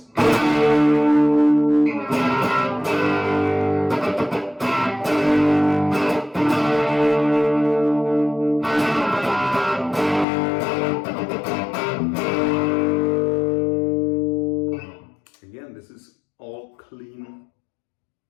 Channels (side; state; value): right; drops out; at 10.2 s